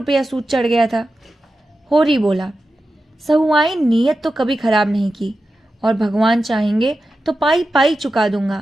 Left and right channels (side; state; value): both; normal; correlation 0.92